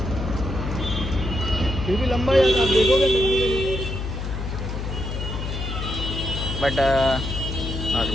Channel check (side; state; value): left; noise; hum, 5 dB below the sound